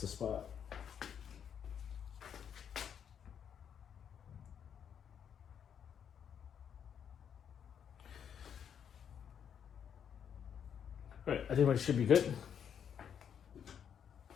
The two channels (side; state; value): right; quieter; 8.2 dB